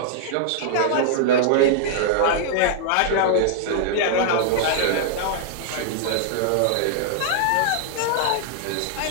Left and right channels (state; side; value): different; both; correlation -0.01